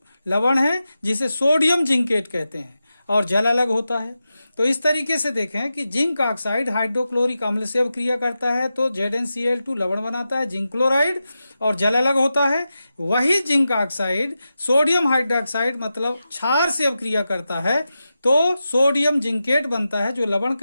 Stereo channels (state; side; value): inverted; both; correlation -0.91